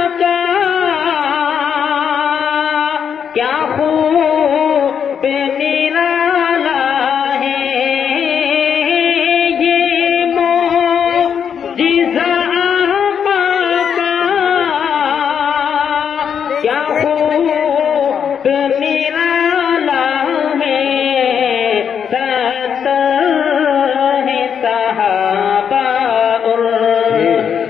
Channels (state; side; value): quieter; right; 7.7 dB